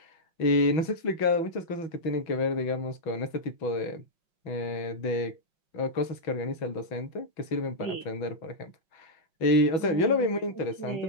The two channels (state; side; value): late; right; 6.1 ms